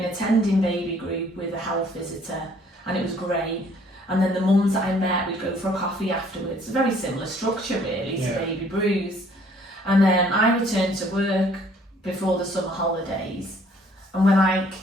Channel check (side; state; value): both; normal; correlation 0.60